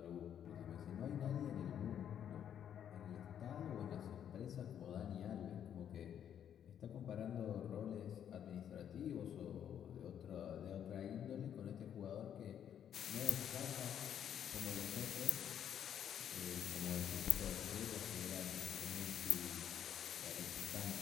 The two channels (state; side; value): quieter; right; 9.3 dB